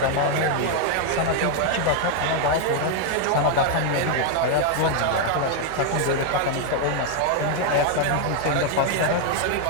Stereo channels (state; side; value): different; both; correlation 0.01